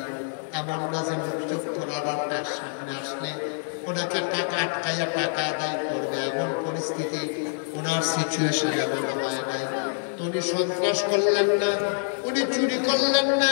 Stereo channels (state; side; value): silent; right; digital silence